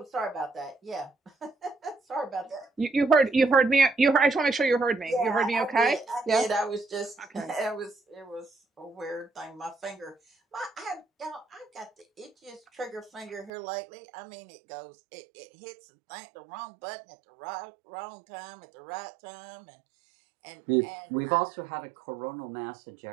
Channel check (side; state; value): left; drops out; at 13.5 s